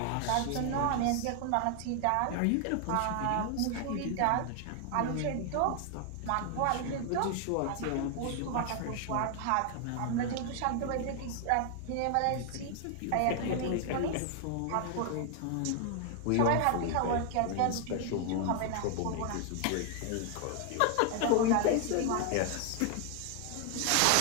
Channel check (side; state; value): both; different; correlation 0.00